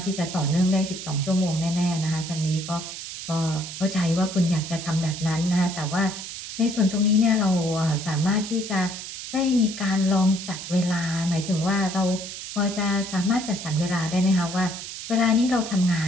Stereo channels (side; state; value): right; noise; hiss, 9 dB below the sound